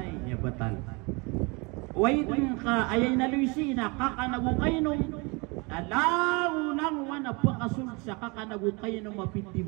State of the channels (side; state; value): left; quieter; 28.6 dB